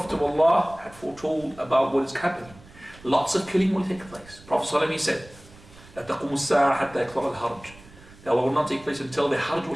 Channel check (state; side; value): noise; right; rumble, 22 dB below the sound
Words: of Allah had foretold about what is happening. Lots of killing will take place. Prophet ﷺ said, لا تقوم الساعة حتى يكثر الحرج. That will not take place until the Hajj